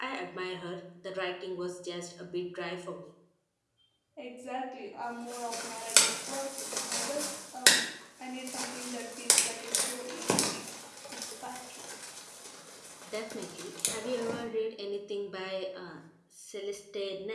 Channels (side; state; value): both; identical; correlation 1.00